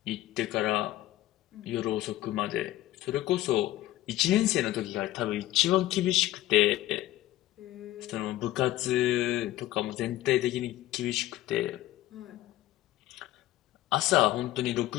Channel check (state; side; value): quieter; right; 15.2 dB